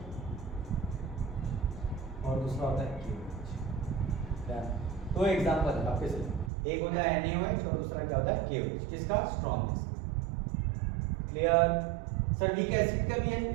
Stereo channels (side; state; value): left; drops out; at 6.5 s